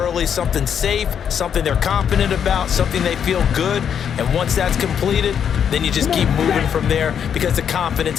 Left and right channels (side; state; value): right; quieter; 8.1 dB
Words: something safe, something they're confident about, something they feel good. And once that's completed, then you just keep moving from there because the